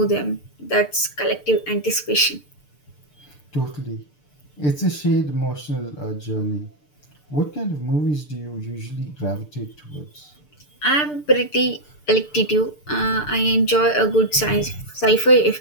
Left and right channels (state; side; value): late; right; 6.8 ms